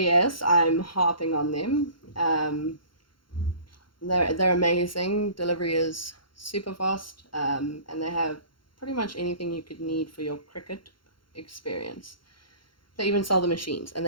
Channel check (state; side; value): late; right; 0.73 ms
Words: I'm harping on them. They're amazing. Delivery is super fast, and they have pretty much anything you could need for your Cricut experience. They even sell the machines, and